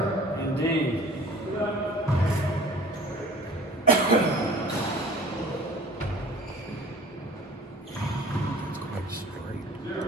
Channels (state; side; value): normal; both; correlation 0.46